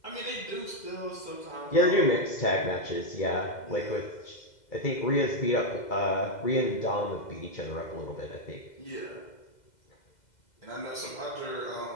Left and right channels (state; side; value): late; right; 2.0 ms